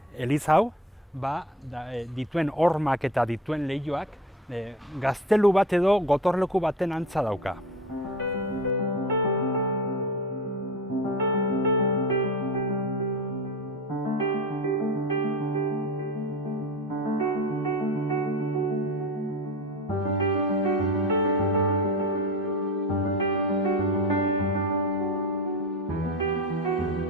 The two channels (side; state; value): both; normal; correlation 0.30